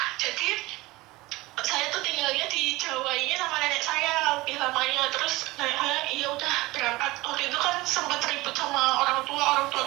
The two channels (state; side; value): quieter; left; 20.4 dB